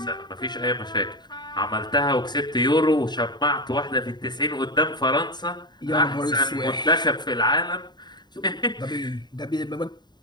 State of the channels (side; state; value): right; late; 0.21 ms